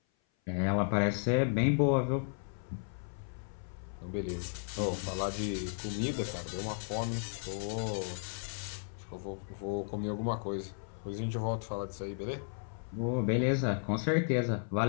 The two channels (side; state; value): right; silent; 55 dB below the other